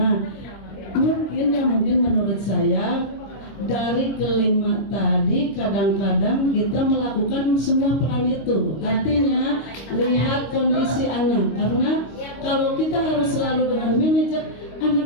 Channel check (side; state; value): right; late; 26 ms